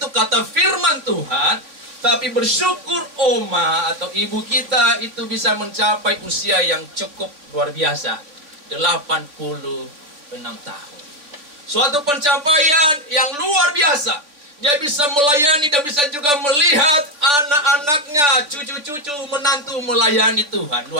kata firman Tuhan. Tapi bersyukur Oma atau ibu kita itu bisa mencapai usia yang cukup luar biasa. 86 tahun. Suatu pencapaian yang luar biasa. Dia bisa melayani dan bisa juga melihat anak-anaknya, cucu-cucu, menantu melayani Tuhan.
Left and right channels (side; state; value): left; late; 3.4 ms